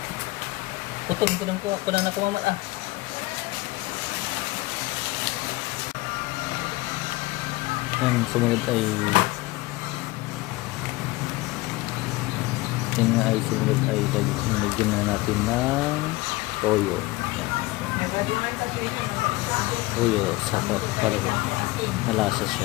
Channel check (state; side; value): quieter; right; 20.7 dB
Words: Putol ko na kumamat ah. Yan, sumunod ay lagyan na natin ng toyo. Yan. Toyo para malasa